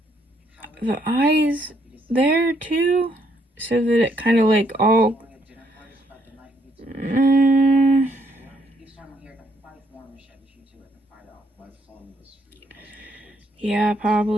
The eyes there too? So that it kind of like all... yeah,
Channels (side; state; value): both; normal; correlation 0.71